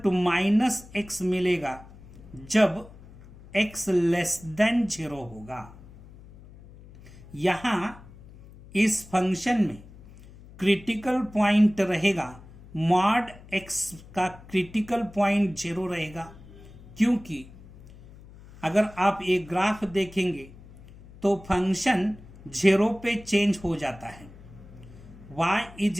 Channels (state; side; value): noise; left; hum, 20 dB below the sound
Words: minus x मिलेगा जब x लेस देन 0 होगा। यहां इस फंक्शन में क्रिटिकल पॉइंट रहेगा, मॉड x का क्रिटिकल पॉइंट 0 रहेगा, क्योंकि अगर आप एक ग्राफ देखेंगे तो फंक्शन 0 पे चेंज हो जाता है। y is